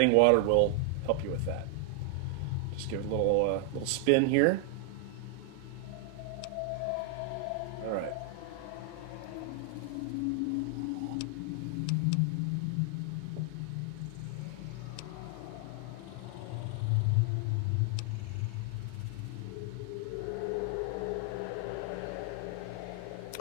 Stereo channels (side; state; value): both; different; correlation 0.00